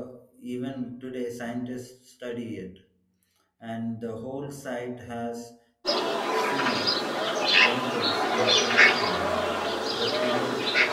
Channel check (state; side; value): identical; both; correlation 1.00